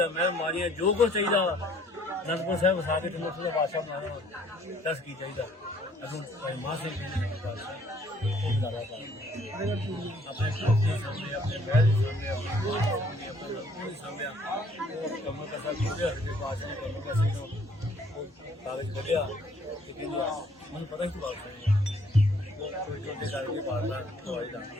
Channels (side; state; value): both; normal; correlation 0.61